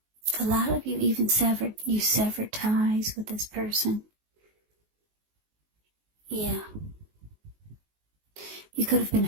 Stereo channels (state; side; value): late; left; 19 ms